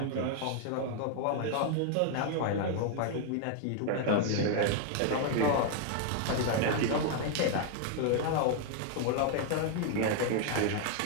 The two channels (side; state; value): both; different; correlation 0.00